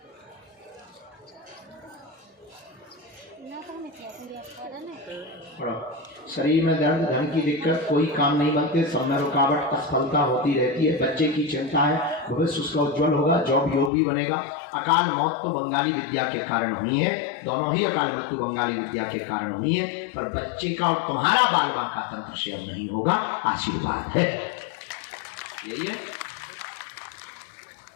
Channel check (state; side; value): drops out; right; at 13.9 s